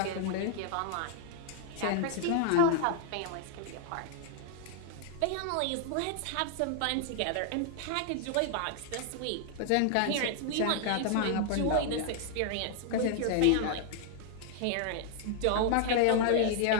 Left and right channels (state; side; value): different; both; correlation 0.00